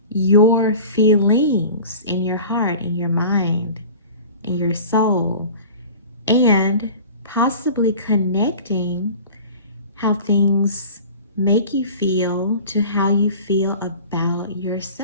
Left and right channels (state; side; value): inverted; both; correlation -0.40